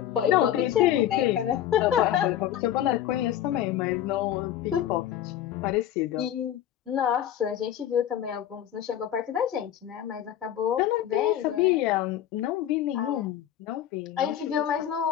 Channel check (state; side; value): quieter; right; 11.2 dB